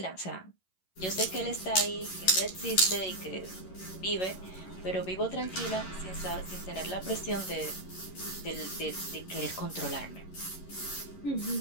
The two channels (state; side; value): late; right; 11 ms